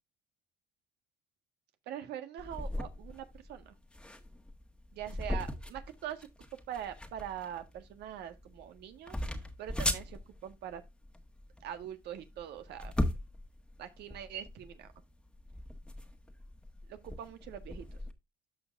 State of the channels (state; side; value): normal; both; correlation 0.52